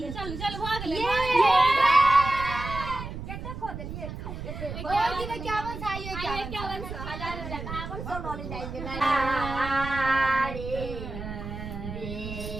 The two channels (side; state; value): right; noise; rumble, 8 dB below the sound